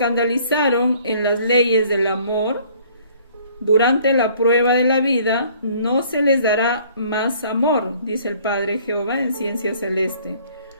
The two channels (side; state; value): both; inverted; correlation -0.57